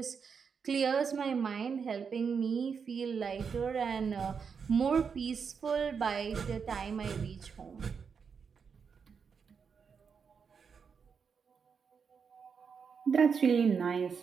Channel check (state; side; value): quieter; left; 6.1 dB